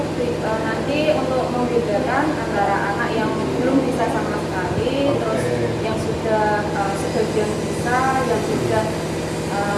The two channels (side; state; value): both; identical; correlation 1.00